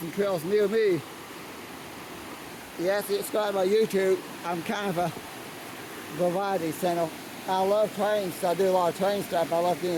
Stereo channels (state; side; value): identical; both; correlation 1.00